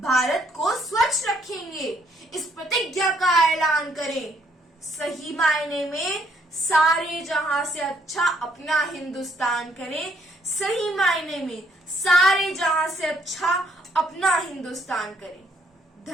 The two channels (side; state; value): both; normal; correlation 0.68